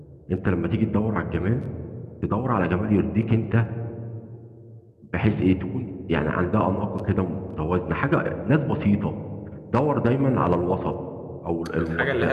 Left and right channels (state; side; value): identical; both; correlation 1.00